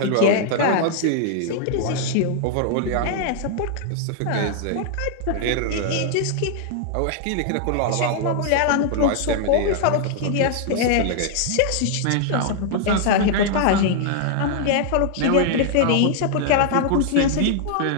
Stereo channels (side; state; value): both; different; correlation 0.00